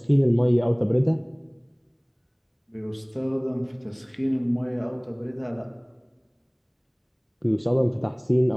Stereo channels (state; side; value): identical; both; correlation 1.00